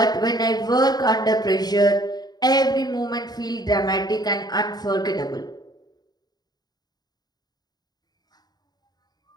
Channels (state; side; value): late; right; 0.19 ms